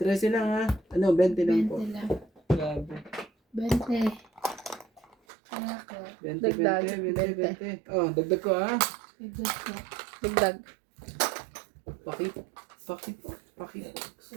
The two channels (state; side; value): drops out; left; at 5.2 s